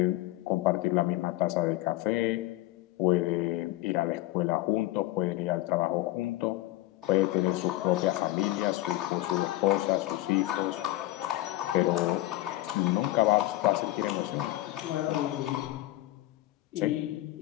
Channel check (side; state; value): right; quieter; 16.9 dB